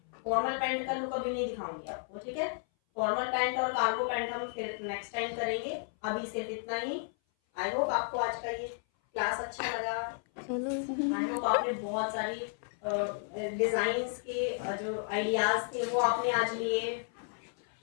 फॉर्मल पैंट का लुक अभी नहीं दिखाऊंगी आपको, ठीक है। फॉर्मल पैंट और कार्गो पैंट हम फिर नेक्स्ट टाइम करेंगे, अभी सिर्फ इतना ही। आई होप आपको आज का ये क्लास अच्छा लगा। आई होप आपने बहुत सारी डिजाइन्स के जो आइडियाज थे वो आपने आज लिए।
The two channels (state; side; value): silent; right; 56 dB below the other